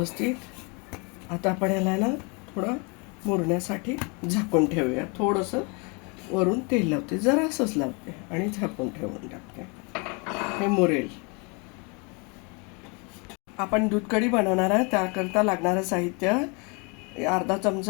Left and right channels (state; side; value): quieter; right; 31.8 dB